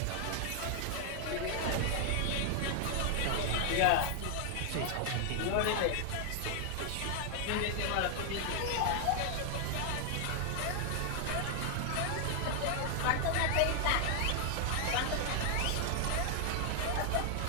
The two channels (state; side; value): different; both; correlation 0.00